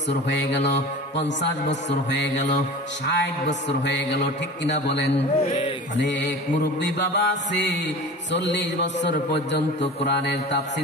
হয়ে গেল, 50 বছর হয়ে গেল, 60 বছর হয়ে গেল, ঠিক কিনা বলেন? অনেক মুরব্বী বাবা আছে 40 বছর পর্যন্ত কোরআনের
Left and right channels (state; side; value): normal; both; correlation 0.36